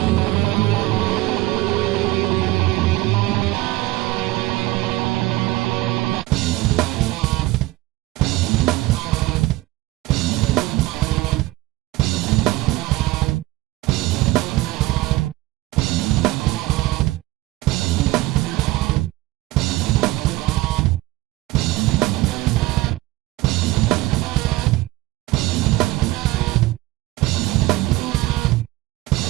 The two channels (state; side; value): quieter; left; 19.0 dB